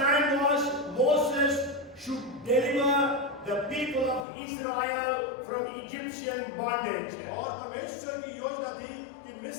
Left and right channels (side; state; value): right; drops out; at 4.2 s